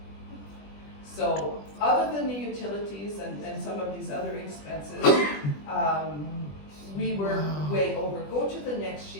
So other than the utilities and some of these other expenses, we were way over. Go to the next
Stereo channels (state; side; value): late; right; 20 ms